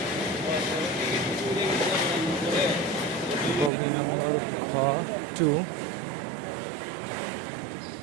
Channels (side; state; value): left; drops out; at 3.7 s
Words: বগি নম্বর খ2।